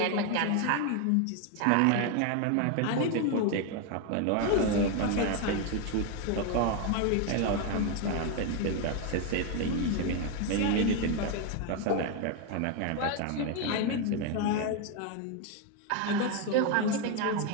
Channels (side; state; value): both; different; correlation 0.01